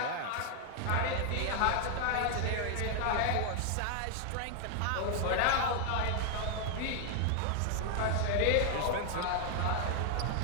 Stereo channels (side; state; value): both; different; correlation 0.00